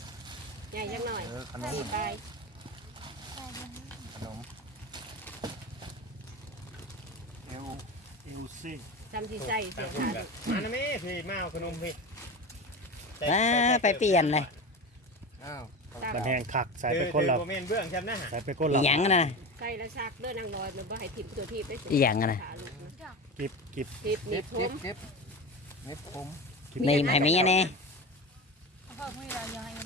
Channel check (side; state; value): both; normal; correlation 0.26